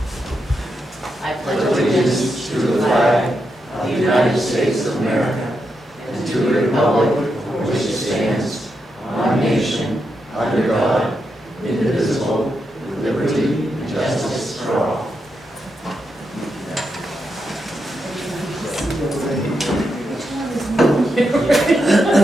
I pledge Allegiance to the flag of the United States of America and to the republic for which it stands, one nation, under God, indivisible, with liberty and justice for all.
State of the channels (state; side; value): normal; both; correlation 0.84